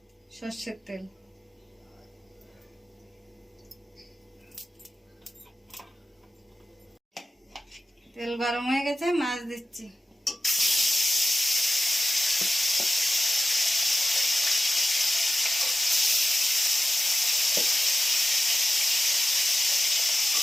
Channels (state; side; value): normal; both; correlation 0.94